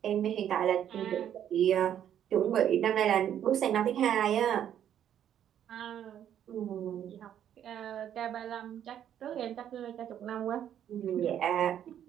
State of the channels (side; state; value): left; quieter; 10.1 dB